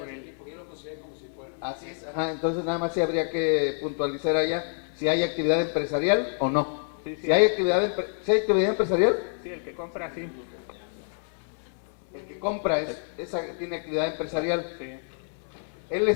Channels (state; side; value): silent; right; 60 dB below the other